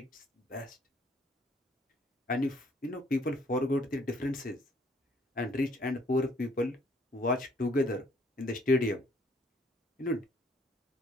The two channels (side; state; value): both; normal; correlation 0.63